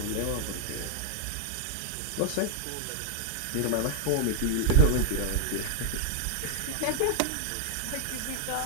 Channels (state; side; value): different; both; correlation -0.01